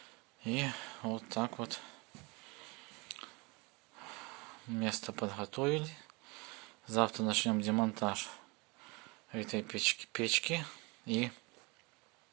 И вот так вот место подготовили. Завтра начнем демонтаж этой печки и,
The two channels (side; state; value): left; quieter; 27.4 dB